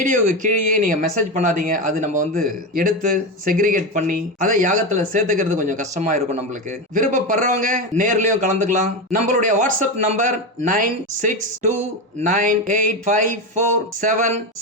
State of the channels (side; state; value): both; normal; correlation 0.16